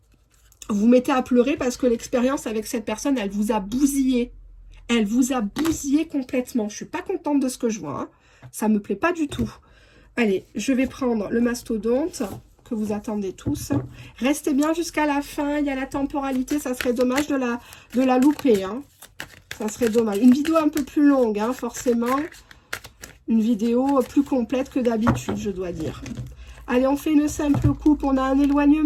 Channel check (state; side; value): identical; both; correlation 1.00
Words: Vous vous mettez à pleurer parce que l'expérience avec cette personne, elle vous a bousillé. Elle vous a bousillé complètement. Je ne suis pas contente de ce que je vois. Hein. Ça ne me plaît pas du tout. Allez, je vais prendre le mastodonte que vous attendez tous. Restez bien jusqu'à la fin. Il y a la temporalité. Ça serait dommage de la louper. Hein. Ça serait dommage. Une vidéo un peu plus longue, hein, forcément. Une vidéo plus complète que d'habitude, je dois dire. Allez, on fait une simple coupe. On a un